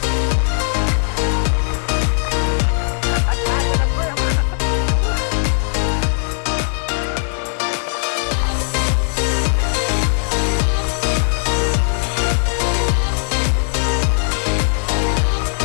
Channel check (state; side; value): silent; right; digital silence